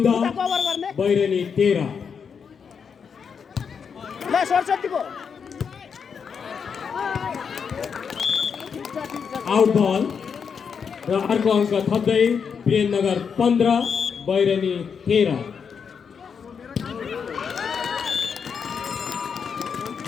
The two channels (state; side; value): quieter; right; 6.5 dB